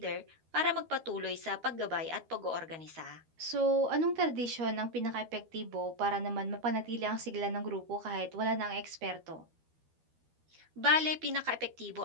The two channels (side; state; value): left; late; 12 ms